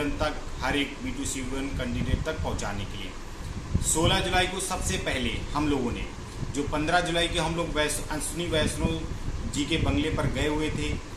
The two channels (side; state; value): both; identical; correlation 1.00